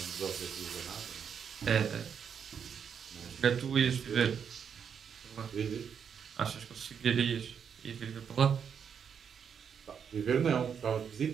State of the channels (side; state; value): left; quieter; 7.3 dB